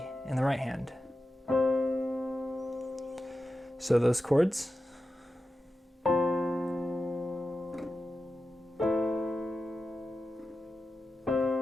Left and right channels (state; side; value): normal; both; correlation 0.91